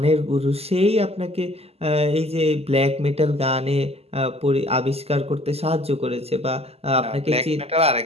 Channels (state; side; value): late; left; 0.29 ms